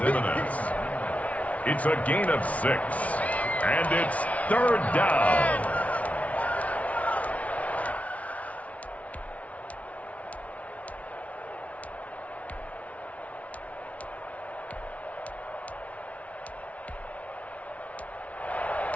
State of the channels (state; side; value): late; right; 0.067 ms